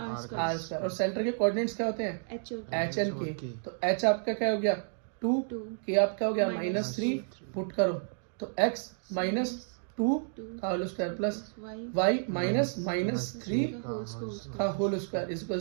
square. और सेंटर के कोऑर्डिनेट्स क्या होते हैं, h h एंड k। तो h आपका क्या हो गया 2, k आपका हो गया -3, पुट करो तो x - 2 का whole square plus y minus -3 का whole square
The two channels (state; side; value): silent; left; digital silence